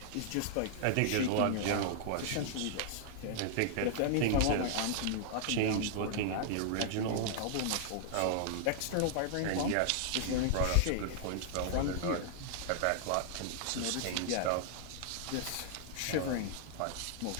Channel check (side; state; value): both; different; correlation 0.00